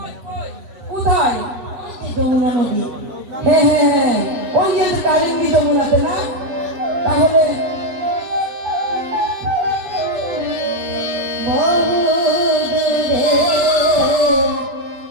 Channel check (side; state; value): left; late; 8.2 ms